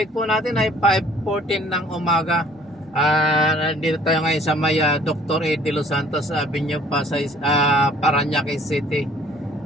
po natin ay 5:14 ng umaga. Nandito tayo ngayon sa may Dr. Ed de Los Santos Avenue, Pasay, Parañaque City.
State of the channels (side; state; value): both; normal; correlation 0.56